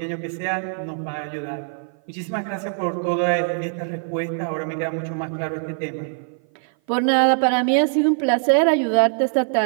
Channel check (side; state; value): left; silent; 56 dB below the other